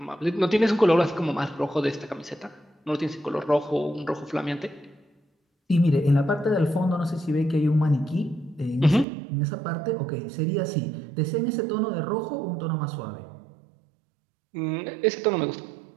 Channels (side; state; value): left; drops out; at 9.1 s